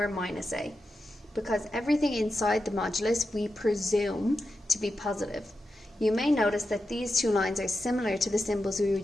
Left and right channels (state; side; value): normal; both; correlation 0.89